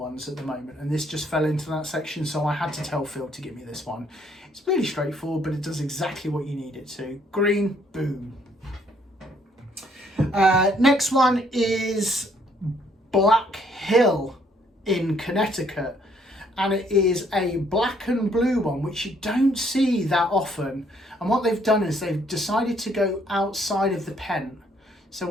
at the moment, and this just fell into that section, so I had to tell Phil to give me this one. It's really straightforward, but it does exactly what you need it to. Green, boom. Next one is Black Hill in Connecticut, and it is a black and blue one, which you don't see that often. And what they've done is they've decided to go outside of the pen. So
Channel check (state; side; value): normal; both; correlation 0.66